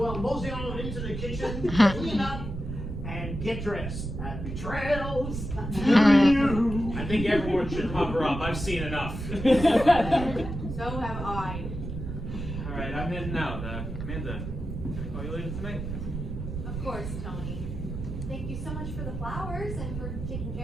mosey on into the kitchen, clean up, and get dressed. Happy trails to you. I think everyone should cover up. I've seen enough. So have I. All right, I'm heading out. Amanda, can I call you later tonight? Of course, Tony. Thank you so much for the flowers and for taking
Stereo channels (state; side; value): noise; right; rumble, 6 dB below the sound